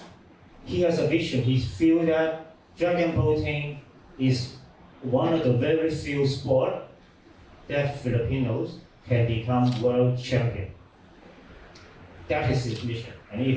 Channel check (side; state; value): both; identical; correlation 1.00